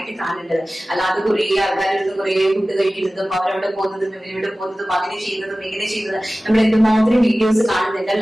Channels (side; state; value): both; normal; correlation 0.97